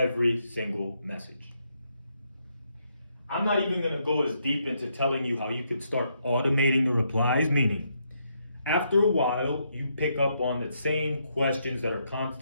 single message. I'm not even going to go as deep into telling you how you could start automating the replies, meaning after a while, you pick up on the same questions that are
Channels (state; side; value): inverted; both; correlation -0.77